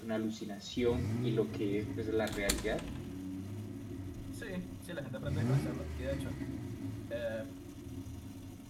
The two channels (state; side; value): identical; both; correlation 1.00